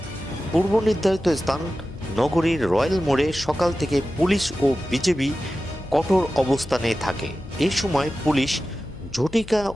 পূর্ব নির্ধারিত স্থান নগরীর রয়্যাল মোড়ে সকাল থেকে পুলিশ ও বিজেপি কঠোর অবস্থানে থাকে। এই সময় পুলিশ ঝটিকা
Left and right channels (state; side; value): noise; left; hum, 16 dB below the sound